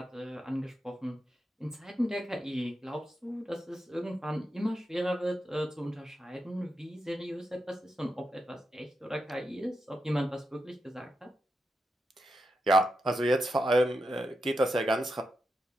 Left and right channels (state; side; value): normal; both; correlation 0.86